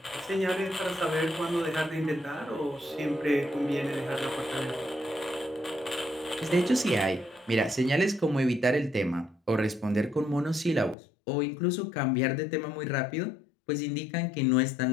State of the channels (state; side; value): drops out; right; at 11.0 s